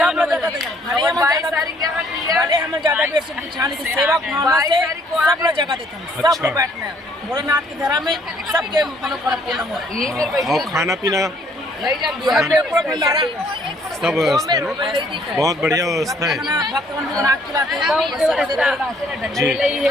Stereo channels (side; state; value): both; normal; correlation 0.63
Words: लोग 22 तारीख के हम ज्यादा बेर से बिछाने की सेवा भावना से सब लोग जगह देते हैं। सब लोग बैठना है भोलेनाथ के घर में सबके मनोकामना पूर्ण हो। और खाना पीना सब व्यवस्था है ना? बहुत बढ़िया व्यवस्था है जी।